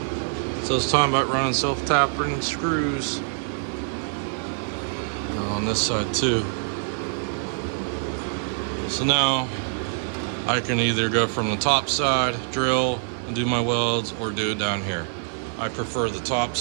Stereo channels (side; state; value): left; silent; 62 dB below the other